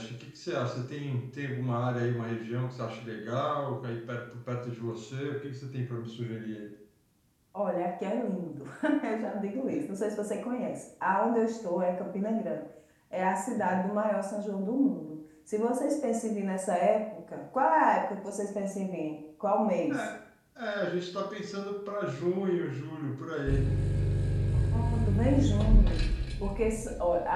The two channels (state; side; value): identical; both; correlation 1.00